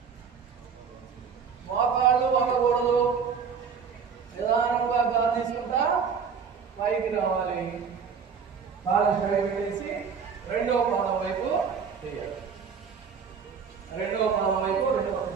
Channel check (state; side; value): quieter; left; 6.3 dB